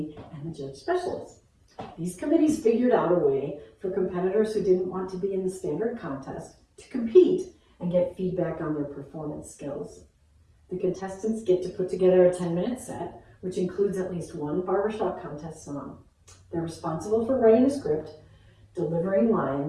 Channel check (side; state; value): both; identical; correlation 1.00